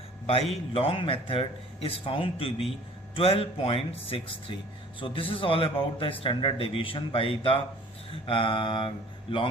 by long method is found to be 12.63. So this is all about the standard deviation by the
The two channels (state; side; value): normal; both; correlation 0.50